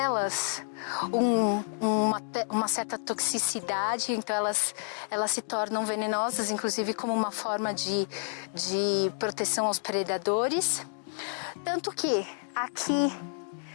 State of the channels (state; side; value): silent; right; digital silence